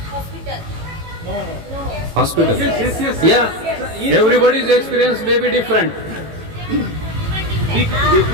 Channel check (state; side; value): late; left; 18 ms